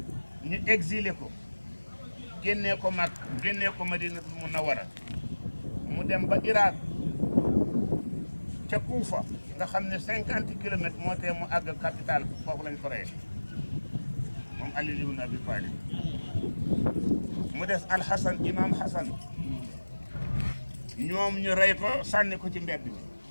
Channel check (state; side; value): inverted; both; correlation -1.00